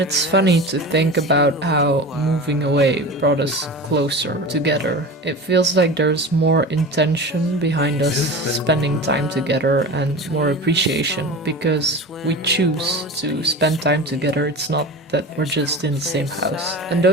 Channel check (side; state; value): both; normal; correlation 0.32